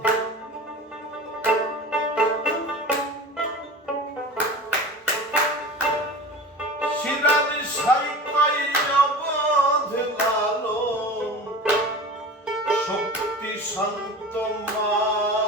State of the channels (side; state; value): both; normal; correlation 0.35